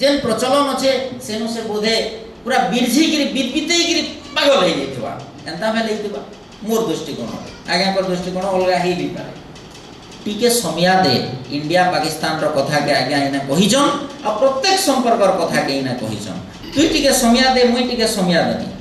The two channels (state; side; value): identical; both; correlation 1.00